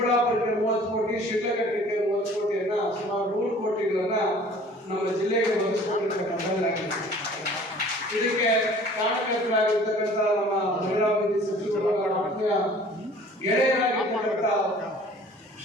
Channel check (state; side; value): normal; both; correlation 0.50